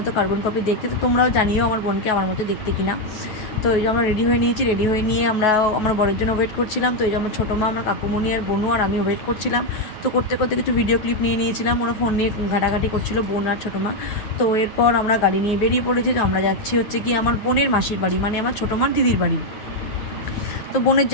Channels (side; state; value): right; late; 9.3 ms